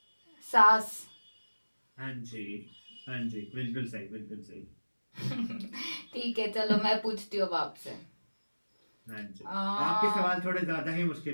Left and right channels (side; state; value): both; inverted; correlation -1.00